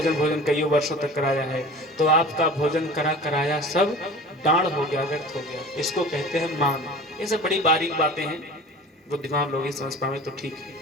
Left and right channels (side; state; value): both; normal; correlation 0.39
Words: कई वर्षों तक कराया है, तो आपका भोजन कराया सब डांड हो गया, व्यर्थ हो गया। इसको कहते हैं मान। ये सब बड़ी बारीक बातें हैं, बुद्धिमान लोग ही समझ पाए तो ठीक है,